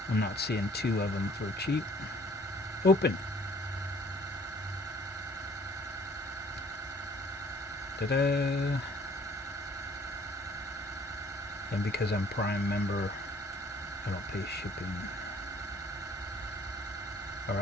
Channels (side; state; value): both; normal; correlation 0.57